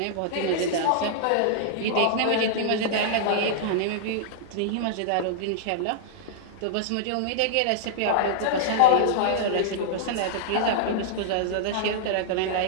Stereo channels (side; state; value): both; different; correlation -0.01